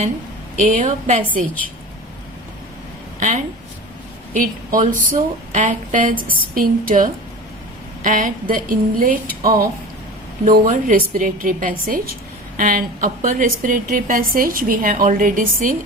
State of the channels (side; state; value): both; normal; correlation 0.35